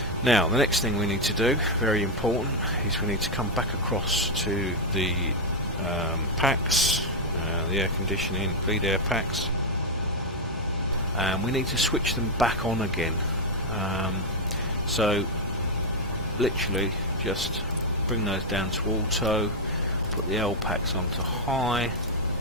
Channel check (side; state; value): both; normal; correlation 0.01